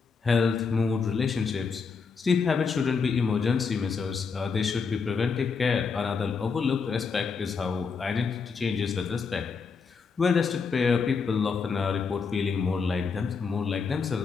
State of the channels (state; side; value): quieter; right; 5.3 dB